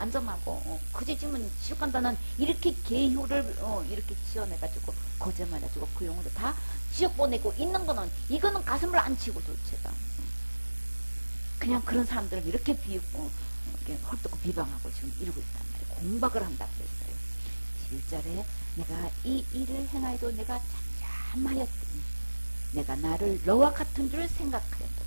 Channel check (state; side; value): inverted; both; correlation -1.00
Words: 전하고 그제 지금 지옥 간다는 이렇게 계효를 이렇게 지어내가지고 거짓말해가지고 그 영혼들 다 지옥 보내고 있는 거는 이거는 가슴을 안 치고 도대체가 그냥 그런 사람들을 이렇게 비웃고 이렇게 헐뜯고 비방하고 지금 이러고 있단 말이에요. 공박을 한다 그랬어요. 11절에 내가 이 일을 행하여도 내가 잠잠하였더니 내가 나를 너와 같은 줄